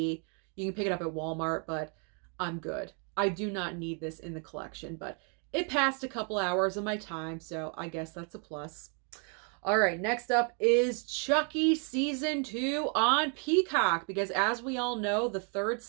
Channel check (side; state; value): left; quieter; 39.7 dB